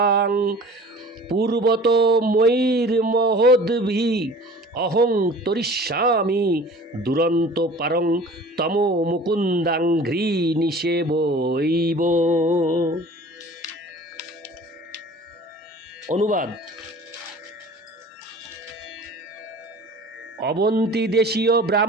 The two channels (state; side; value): normal; both; correlation 0.44